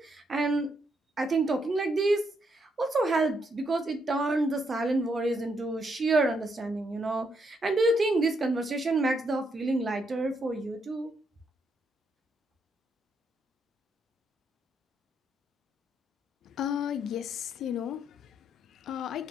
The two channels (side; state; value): both; normal; correlation 0.77